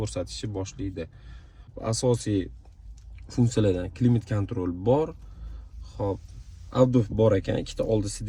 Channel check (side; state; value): both; identical; correlation 1.00